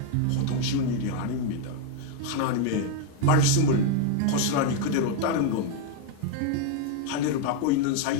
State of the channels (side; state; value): both; different; correlation 0.01